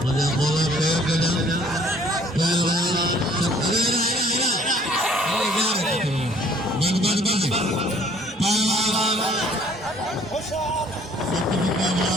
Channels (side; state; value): both; normal; correlation 0.57